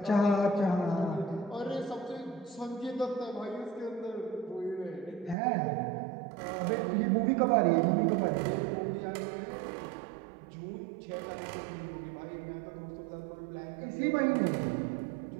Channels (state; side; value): drops out; left; at 5.4 s